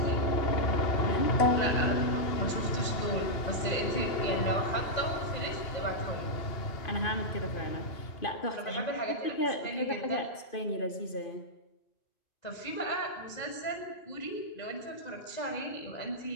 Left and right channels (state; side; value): late; right; 2.5 ms